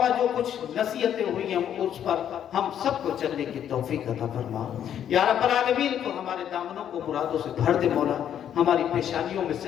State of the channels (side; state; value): right; quieter; 9.7 dB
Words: جو کچھ نصیحتیں ہوئی ہیں اس پر ہم سب کو چلنے کی توفیق عطا فرما۔ یا رب العالمین تو ہمارے دامنوں کو مرادوں سے بھر دے مولا، ہماری پیشانیوں میں